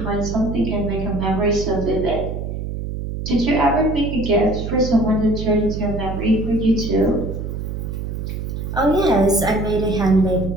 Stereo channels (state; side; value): noise; right; hum, 5 dB below the sound